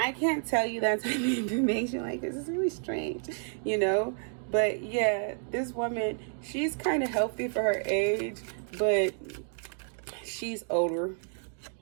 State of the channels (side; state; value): left; silent; 58 dB below the other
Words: can't tell you that type of information. Like, this is really strange, you know. But yeah, this woman, she's kind of healthy for her age, but she's older.